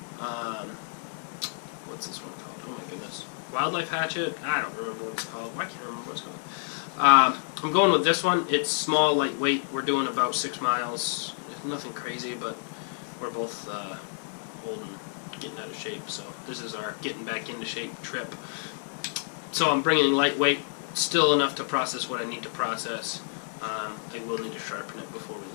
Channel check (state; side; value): silent; right; 59 dB below the other